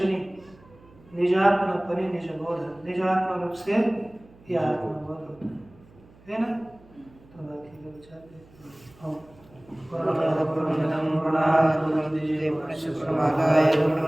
निजात्म परि निज बोध, निजात्म रूप से यह आत्मबोध होता है ना। तो बाकी लोग चाहते हैं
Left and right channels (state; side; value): noise; right; hum, 26 dB below the sound